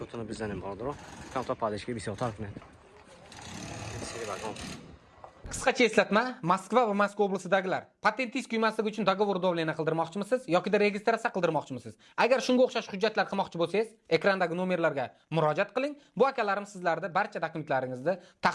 бизанем barodaro. Камтар падишгӣ бисёртар кунед. Seri vagon. Qisqacha eslatma, Moskva va Moskva oblasidagilar patentingiz kuymasligi uchun dogovor davlena qildirmoqchimisiz yoki registratsiya qildirmoqchimisiz? Agar shunga o'xshash hujjatlar qilmoqchi bo'lsangiz, ekrandagi nomerlarga murojaat qiling. Bu akalarim sizlarda barcha dokumentlaringizni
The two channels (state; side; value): identical; both; correlation 1.00